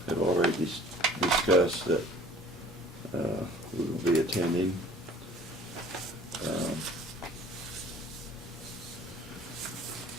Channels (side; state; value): both; normal; correlation 0.50